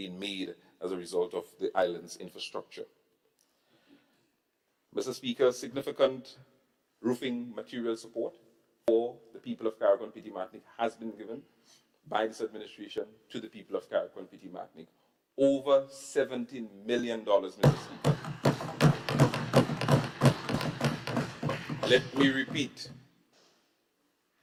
made as a result of the island's infrastructure. Mr. Speaker, significant roofing material support for the people of Carriacou and Petit-Martinique has been given by this administration to the people of Carrick and Petit Martinique. Over $17 million, Mr. Speaker. Let me repeat,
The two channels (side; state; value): both; identical; correlation 1.00